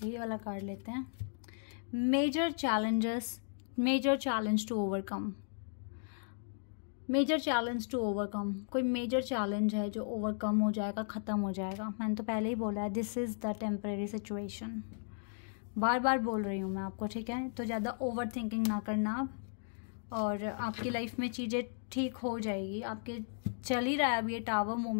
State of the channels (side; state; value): right; silent; digital silence